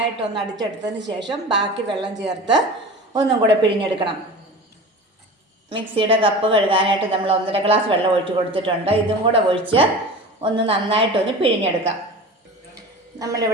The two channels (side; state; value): both; normal; correlation 0.35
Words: അടിച്ചെടുത്തതിന് ശേഷം ബാക്കി വെള്ളം ചേർത്ത് ഒന്നും കൂടെ പിഴിഞ്ഞെടുക്കണം. മിക്സിയുടെ കപ്പ് കഴുകാനായിട്ട് നമ്മൾ 1.5 ഗ്ലാസ് വെള്ളം ഒഴിച്ച് കൊടുത്തിട്ടുണ്ട്. ഇതും കൂടെ ഒഴിച്ച് ഒന്ന് നന്നായിട്ടൊന്ന് പിഴിഞ്ഞെടുക്കാം.